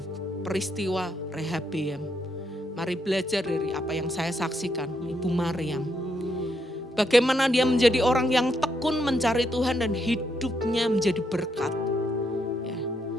peristiwa Rehabiam. Mari belajar dari apa yang saya saksikan, Ibu Maryam. Bagaimana dia menjadi orang yang tekun mencari Tuhan dan hidupnya menjadi berkat. Ya.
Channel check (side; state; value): both; normal; correlation 0.77